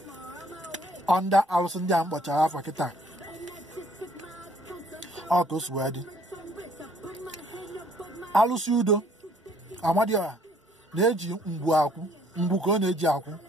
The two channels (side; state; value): both; normal; correlation 0.62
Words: ọnda alụsị ndị a mkpọchara afọ kịta. Ọ ka o si wee dị. Alụsị udo Amadioha na-eji ngwu akwụ, ngwu ka ọ na-eji akwụ.